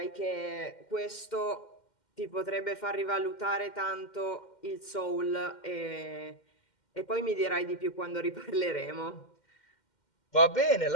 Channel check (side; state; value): right; late; 2.1 ms